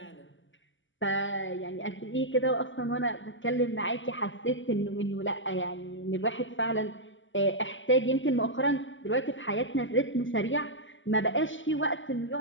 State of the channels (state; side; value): late; right; 0.56 ms